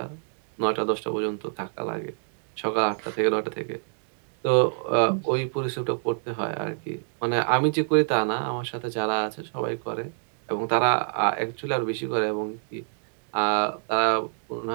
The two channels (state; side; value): silent; left; digital silence